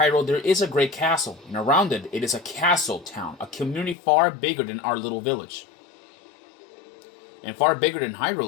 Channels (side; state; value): right; drops out; at 4.0 s